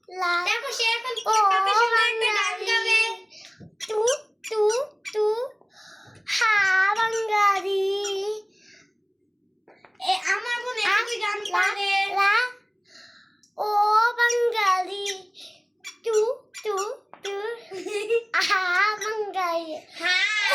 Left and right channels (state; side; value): identical; both; correlation 1.00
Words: লা দেখো সে এখন কত সুন্দর একটা গান গাবে। তু তু তু হা বাঙালি আমার বোন একই গান পারে। লা ও বাঙালি তু তু তু হা বাঙালি